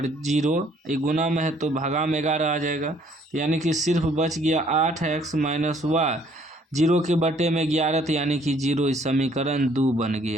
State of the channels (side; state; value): both; normal; correlation 0.61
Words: 0, ये गुना में है तो भागा में 11 आ जाएगा, यानी कि सिर्फ बच गया 8x माइनस वाई, 0 के बटे में 11, तो यानी कि 0, इस समीकरण 2 बन